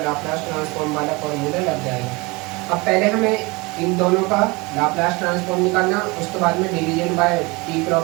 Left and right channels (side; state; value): left; quieter; 25.0 dB